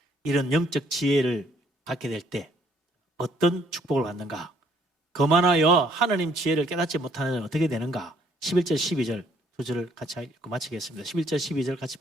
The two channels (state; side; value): normal; both; correlation 0.65